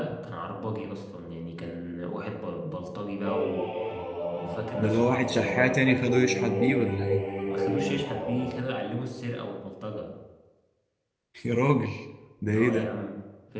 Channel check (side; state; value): both; identical; correlation 1.00